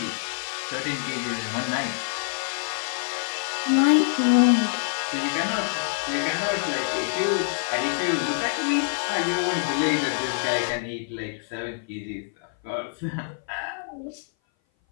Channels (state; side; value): silent; right; 57 dB below the other